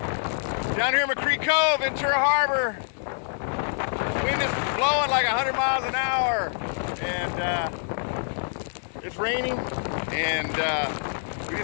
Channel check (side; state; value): right; silent; 61 dB below the other